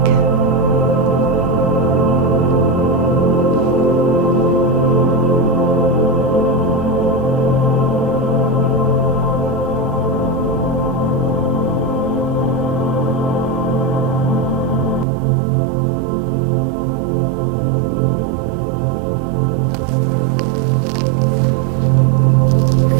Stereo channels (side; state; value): left; drops out; at 15.1 s